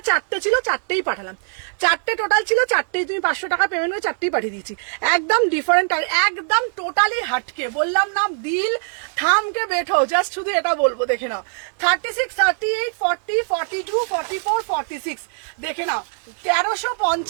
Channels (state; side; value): silent; left; 65 dB below the other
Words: 4টে ছিল, 4টেই পাঠালাম, 4টে টোটাল ছিল, 4টেই তুমি 500 টাকা পেমেন্ট করে 4টেই পাঠিয়ে দিয়েছি। একদম ডিফারেন্ট, একদম টোটালি হাটকে, বললাম না দিল থামকে বেঠো, জাস্ট শুধু এটা বলবো, দেখে নাও। 36, 38, 40, 42, 44, 46 দেখে নাও,